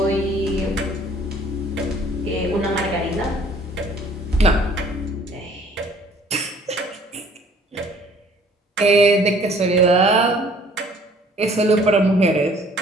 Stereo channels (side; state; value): both; normal; correlation 0.56